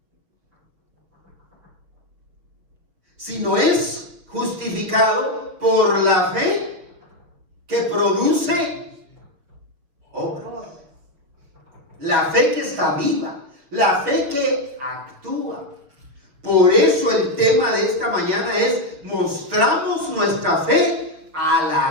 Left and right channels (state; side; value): late; left; 6.0 ms